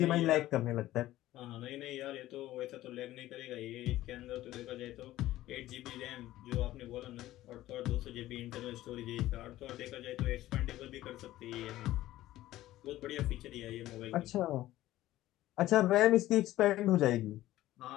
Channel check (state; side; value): quieter; right; 15.2 dB